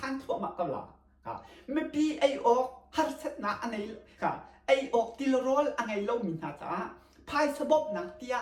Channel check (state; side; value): identical; both; correlation 1.00